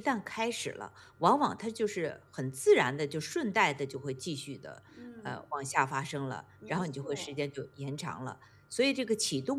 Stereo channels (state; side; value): identical; both; correlation 1.00